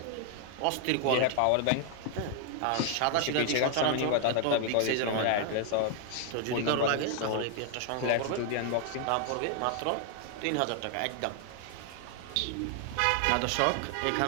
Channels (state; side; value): different; both; correlation 0.00